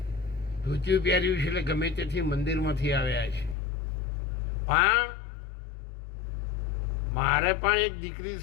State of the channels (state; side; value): drops out; right; at 3.6 s